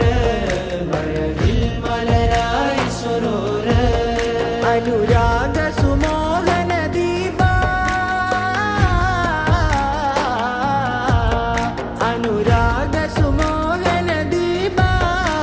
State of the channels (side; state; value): both; identical; correlation 1.00